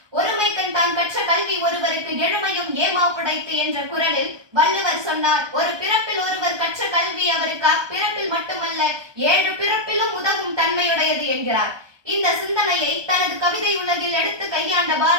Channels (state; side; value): late; left; 1.2 ms